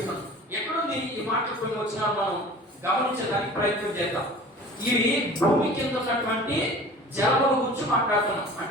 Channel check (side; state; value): both; normal; correlation 0.42